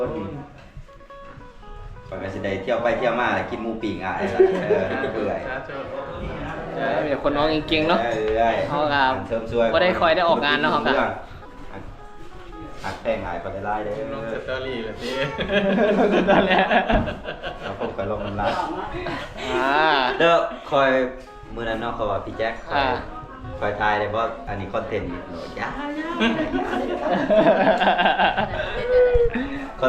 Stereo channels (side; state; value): both; identical; correlation 1.00